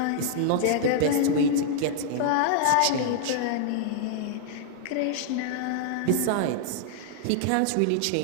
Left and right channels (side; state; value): both; different; correlation -0.01